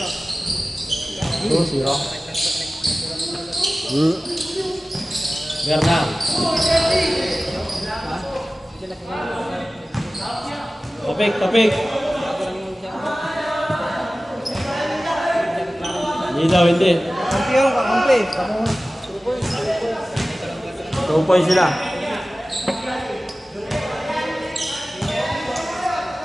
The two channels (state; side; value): normal; both; correlation 0.97